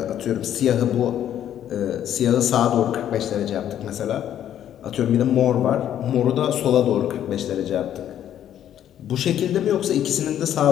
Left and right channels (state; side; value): quieter; right; 10.7 dB